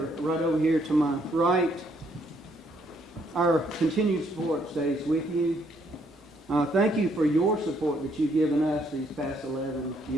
right over here to my right. Our continued support stays with you. Thank you for your support that you've given us these past 11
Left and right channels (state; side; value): normal; both; correlation 0.70